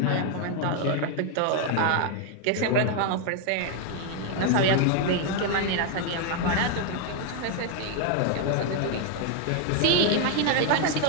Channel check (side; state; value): both; different; correlation 0.00